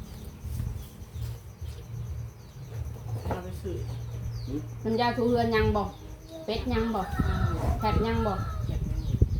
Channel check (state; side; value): identical; both; correlation 1.00